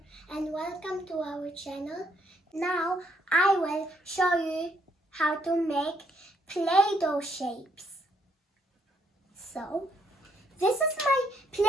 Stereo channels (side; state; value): both; normal; correlation 0.71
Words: and welcome to our channel. Now I will show you how to make Play-Doh shapes. So this is my